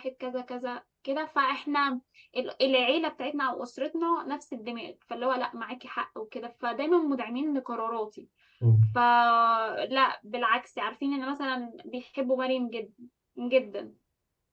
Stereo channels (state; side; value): identical; both; correlation 1.00